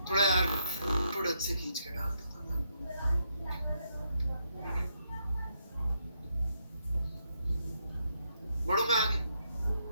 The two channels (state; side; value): inverted; both; correlation -0.78